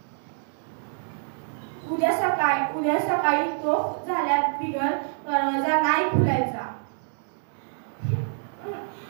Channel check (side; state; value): left; silent; digital silence